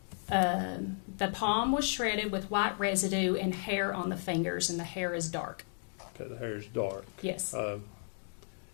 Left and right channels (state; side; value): silent; right; 55 dB below the other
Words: The palm was shredded with white residue and hair on the fingers, and the hair is dark. Okay, the hair is dark. Yes. But